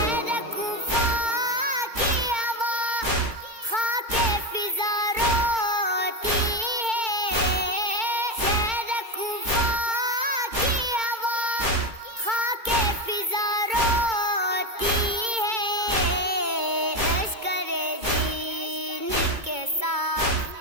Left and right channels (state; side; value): late; left; 2.2 ms